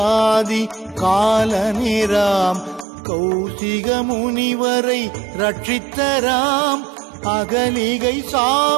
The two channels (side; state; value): left; drops out; at 2.9 s